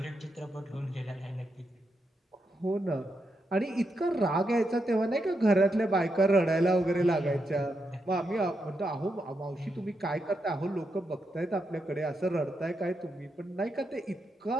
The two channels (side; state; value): both; normal; correlation 0.83